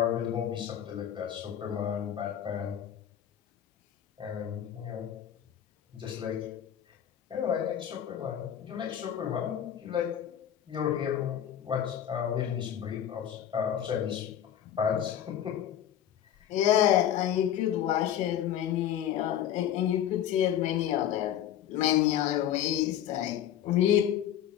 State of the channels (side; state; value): right; quieter; 10.4 dB